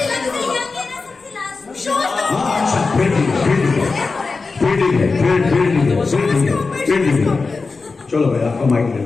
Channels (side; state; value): right; quieter; 4.2 dB